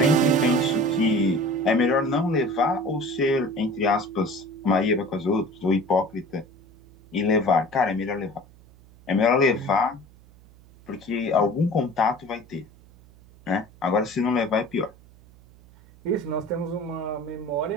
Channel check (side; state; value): right; noise; hum, 25 dB below the sound